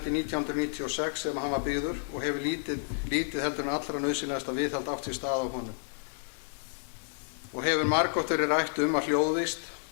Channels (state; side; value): silent; right; 57 dB below the other